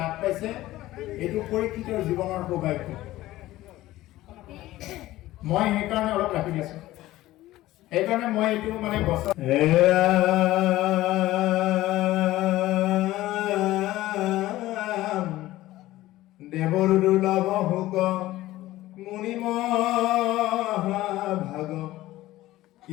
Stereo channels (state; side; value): quieter; right; 16.3 dB